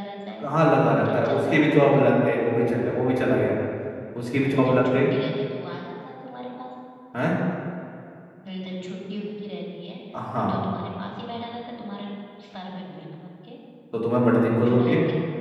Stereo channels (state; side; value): identical; both; correlation 1.00